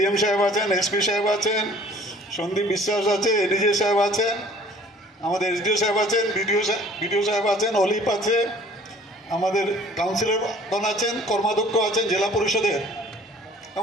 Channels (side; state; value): both; normal; correlation 0.52